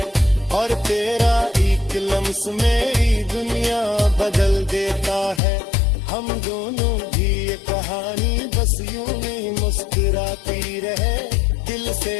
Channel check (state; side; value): drops out; right; at 5.4 s